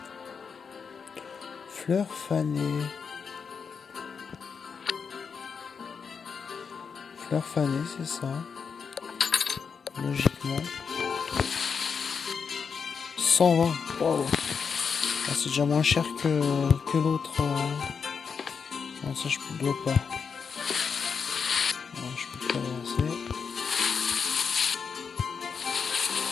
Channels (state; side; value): quieter; right; 6.0 dB